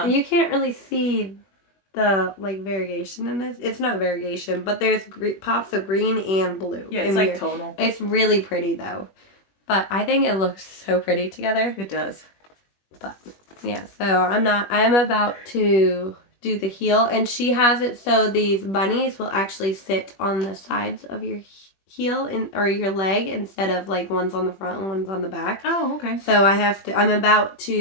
you can't really see the like variation in this. It's not variegation, but there's pops of green and blue. Yeah, it's like tonal. It's really pretty though. But I think it looks so pretty together. It does. But yeah, so I'm about to do the heel, and she has it so these bunnies will actually sit on the sides of your heel or your leg instead of like one's on the front and one's on the back. Oh, okay. So I'm about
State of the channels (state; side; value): late; right; 21 ms